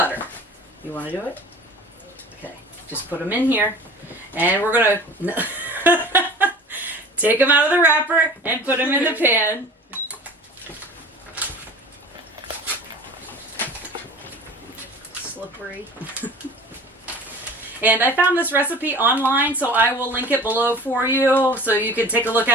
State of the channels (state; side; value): normal; both; correlation 0.42